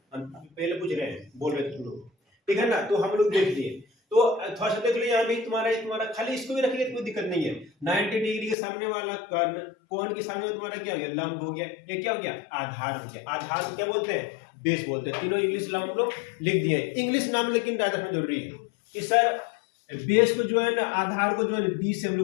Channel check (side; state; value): right; drops out; at 8.6 s